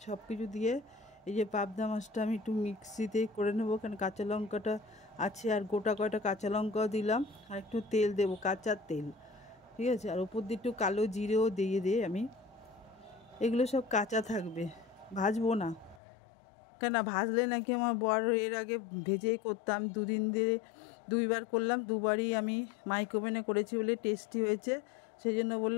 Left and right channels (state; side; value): drops out; right; at 16.0 s